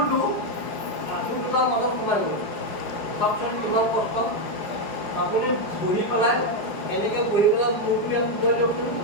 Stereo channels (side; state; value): right; late; 5.2 ms